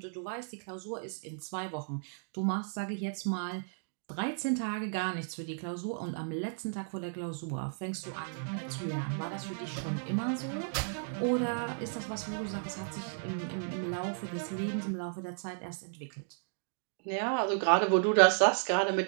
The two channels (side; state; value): left; silent; digital silence